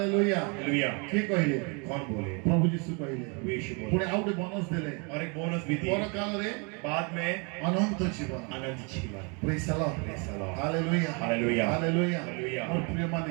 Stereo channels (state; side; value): quieter; left; 33.4 dB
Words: हालेलुया। की कहिले कौन बोले? प्रभु यीशु कहिले प्रभु यीशु बोले। पुणे आउटे बोनस देले और एक बोनस भी दी पर काल रे बाद में, अनंत जीवन आनंद जीवन। Praise the Lord Praise the Lord। Hallelujah hallelujah. Hallelujah hallelujah. और प्रिय